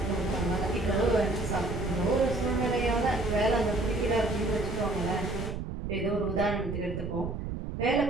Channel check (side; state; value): right; noise; rumble, 5 dB below the sound